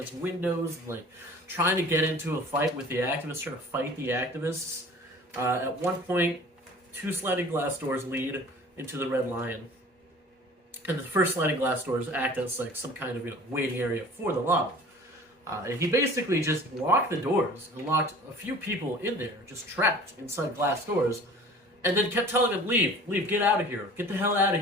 windows and like trying to get into a fight with the activists, trying to fight the activists. At one point, 2 sliding glass doors lead into the Red Lion, and the first sliding glass doors act as like some kind of waiting area for the lobby. And he basically just locked the doors and locked a few people in there, just trapped inside glass doors, and then kept telling them, leave, get out of here, get the hell out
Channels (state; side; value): normal; both; correlation 0.45